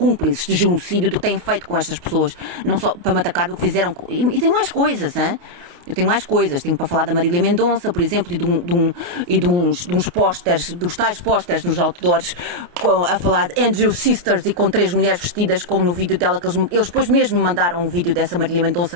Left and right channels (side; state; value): left; late; 29 ms